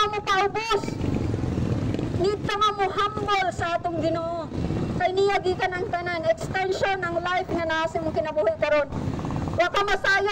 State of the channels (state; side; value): identical; both; correlation 1.00